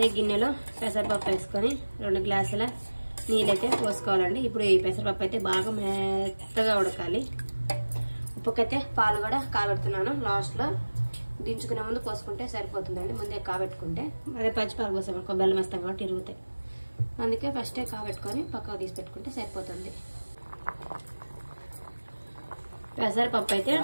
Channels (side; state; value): both; inverted; correlation -1.00